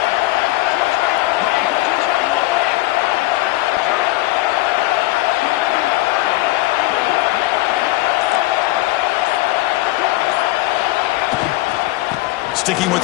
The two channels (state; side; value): quieter; right; 19.1 dB